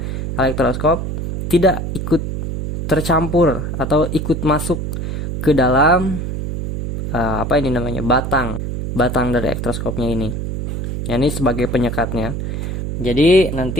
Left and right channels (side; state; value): right; noise; hum, 4 dB below the sound